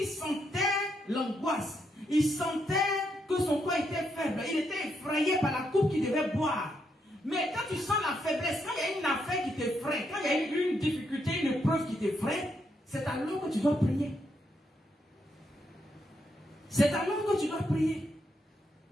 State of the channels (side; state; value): both; normal; correlation 0.79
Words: sentait l'angoisse. Il sentait que son corps était faible. Il était effrayé par la coupe qu'il devait boire. Mais quand tu sens la faiblesse, quand il y a une affaire qui t'effraie, quand il y a une difficulté, une épreuve qui t'effraie, c'est alors que tu dois prier. C'est alors que tu dois prier.